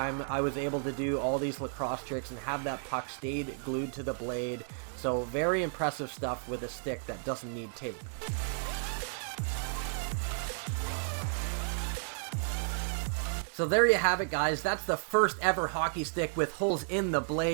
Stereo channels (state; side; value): silent; left; digital silence